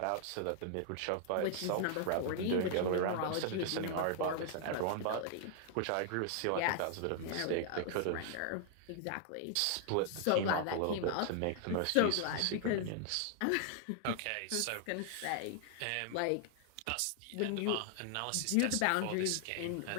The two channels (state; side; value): different; both; correlation 0.00